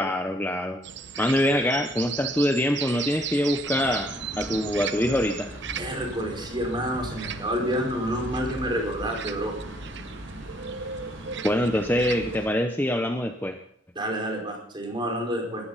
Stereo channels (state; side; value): normal; both; correlation 0.65